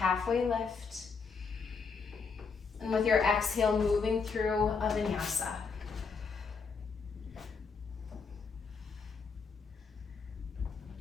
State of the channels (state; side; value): quieter; right; 5.2 dB